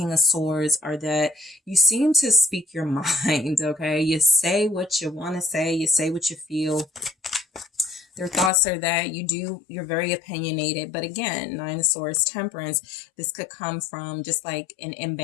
of Swords are that you seem to speak your mind, okay? You say what you want to say, you say what you feel. Their thoughts are that you're very opinionated. But again, Nine of Swords, Temperance, this could come from just like an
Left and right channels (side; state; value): right; drops out; at 8.5 s